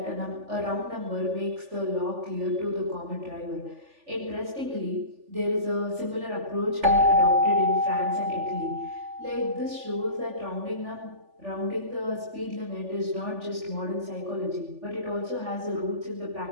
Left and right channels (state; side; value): late; left; 3.4 ms